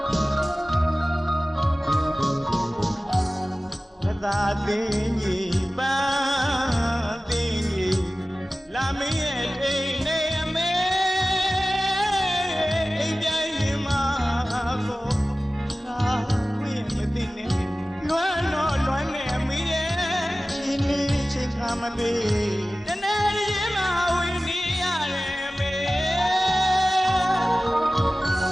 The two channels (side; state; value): both; normal; correlation 0.97